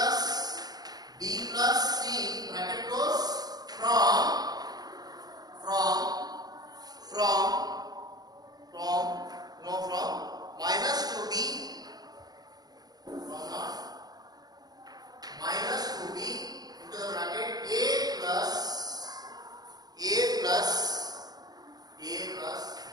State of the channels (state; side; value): late; left; 0.19 ms